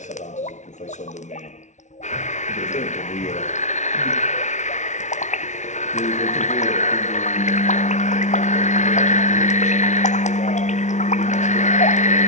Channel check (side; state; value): right; late; 0.34 ms